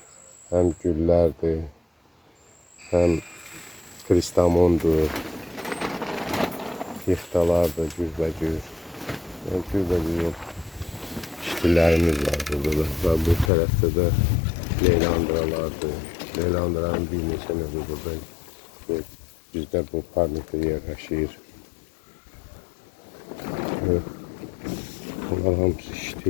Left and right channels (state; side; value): drops out; right; at 13.5 s